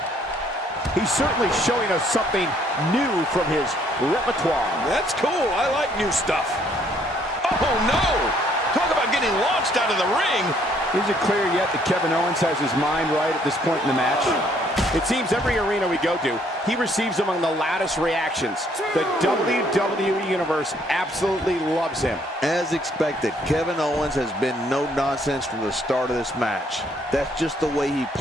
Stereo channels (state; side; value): normal; both; correlation 0.66